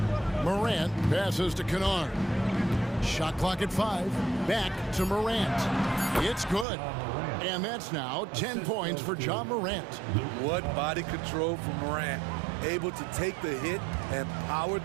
Morant passes to Kennard. Shot clock at 5. Back to Morant. It's good. And that's now 10 points for John Morant. What body control from Morant. Able to take the hit and power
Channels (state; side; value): drops out; left; at 6.7 s